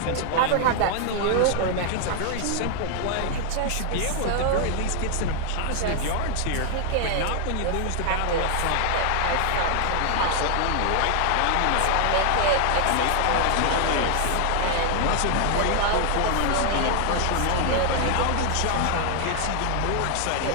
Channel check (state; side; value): different; both; correlation 0.00